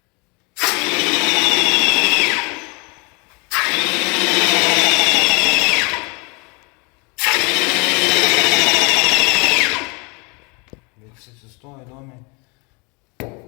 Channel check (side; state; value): right; quieter; 30.8 dB